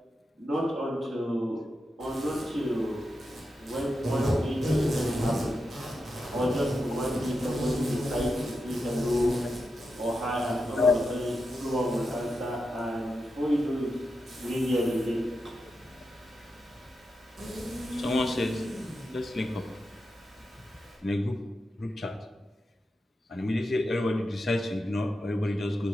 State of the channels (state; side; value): normal; both; correlation 0.88